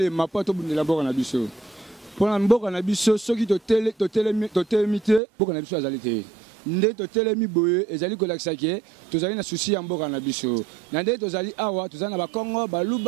mpo tobundela mboka na biso mpona mboka na biso soki totelemi te mboka na biso azali te nde totelemi boye ezali kolakisa ke tozali na susi ya mboka na biso na nde tozali awa tozali na bakongo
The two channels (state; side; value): drops out; left; at 5.2 s